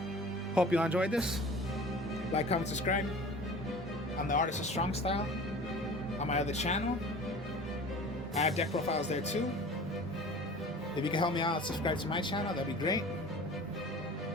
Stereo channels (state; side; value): normal; both; correlation 0.41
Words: hope you all enjoyed this. Like, comment, subscribe. I'm the Artist of Strong Style on my other channel. I have deck profiles there too. If you can help me out, subscribe to my channel, that'd be great.